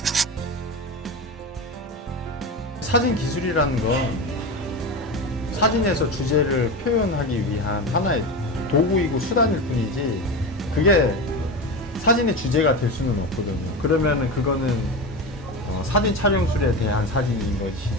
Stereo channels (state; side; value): normal; both; correlation 0.22